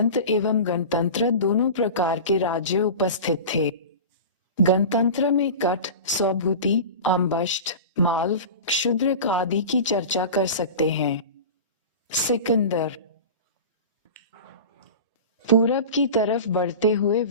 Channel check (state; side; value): inverted; both; correlation -0.32